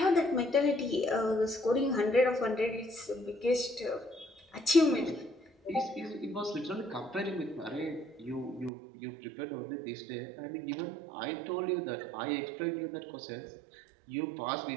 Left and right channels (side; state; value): left; drops out; at 8.7 s